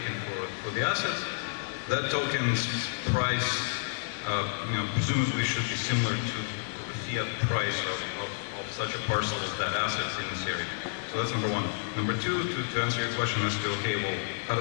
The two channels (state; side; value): silent; right; 58 dB below the other